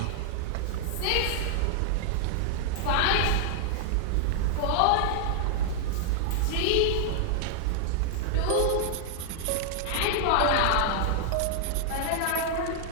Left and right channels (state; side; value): different; both; correlation -0.01